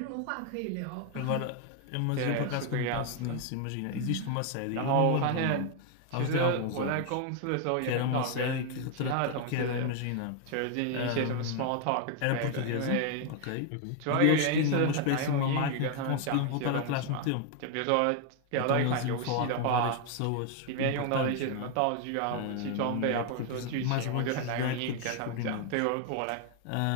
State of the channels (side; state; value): both; different; correlation 0.00